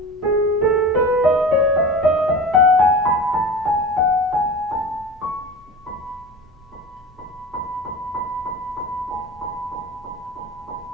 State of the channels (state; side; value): normal; both; correlation 0.33